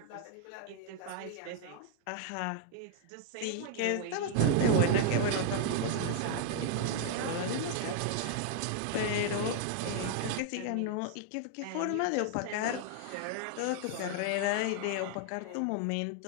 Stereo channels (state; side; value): different; both; correlation 0.00